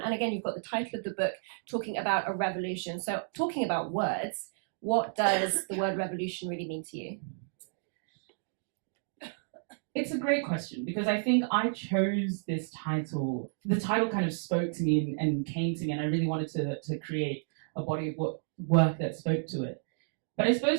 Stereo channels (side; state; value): left; silent; digital silence